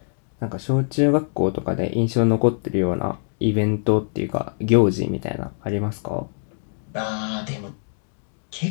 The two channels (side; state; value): right; silent; 63 dB below the other